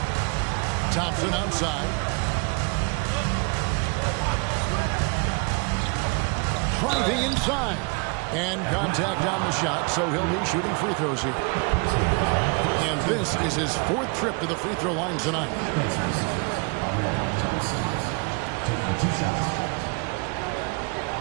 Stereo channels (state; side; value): quieter; left; 33.0 dB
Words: Thompson outside. Driving inside. And contact on the shot, so he'll be shooting free throws here. And this is his 4th trip to the free throw line tonight. Thompson taking 2 shots.